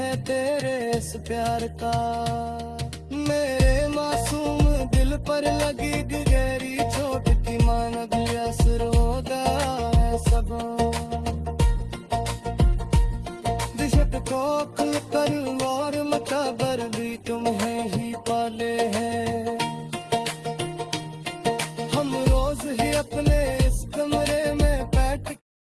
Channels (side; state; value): both; identical; correlation 1.00